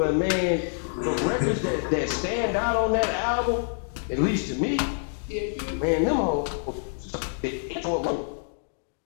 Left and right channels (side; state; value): right; silent; digital silence